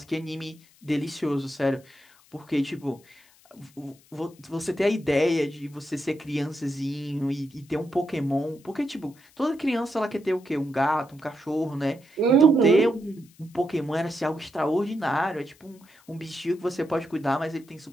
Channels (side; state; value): left; noise; hiss, 29 dB below the sound